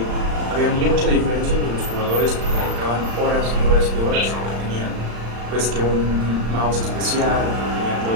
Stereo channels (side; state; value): left; late; 35 ms